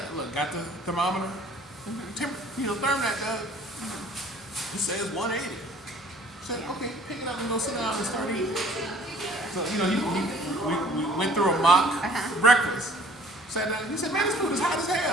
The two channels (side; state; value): both; normal; correlation 0.53